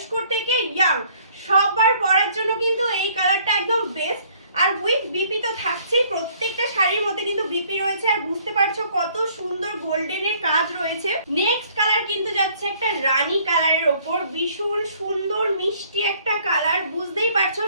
থেকে ইয়াং সবার পরার জন্য কিন্তু এই কালারটা একদম বেস্ট। আর উইথ বিপি তো থাকছেই, প্রত্যেকটা শাড়ির মধ্যে কিন্তু বিপি রয়েছে, আর বুঝতে পারছো কত সুন্দর গোল্ডেনের কাজ রয়েছে। নেক্সট কালার কিন্তু যাচ্ছে একটা রানী কালারের ওপর, ভীষণ সুন্দর মিষ্টি একটা কালার, বুঝতেই পারছো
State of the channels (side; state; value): both; inverted; correlation -0.60